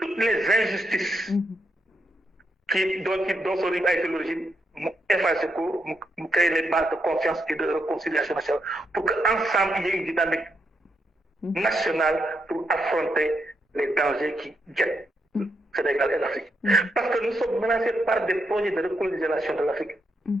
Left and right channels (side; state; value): both; normal; correlation 0.80